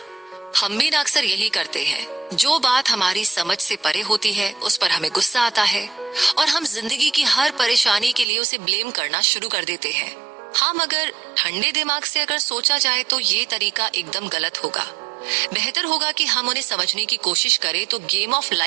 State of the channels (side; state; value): left; drops out; at 8.2 s